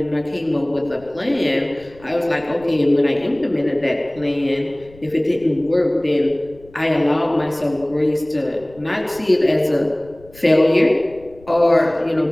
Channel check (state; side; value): noise; left; rumble, 24 dB below the sound